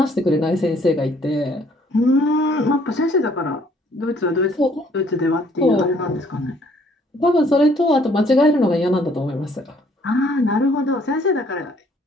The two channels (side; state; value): both; normal; correlation 0.62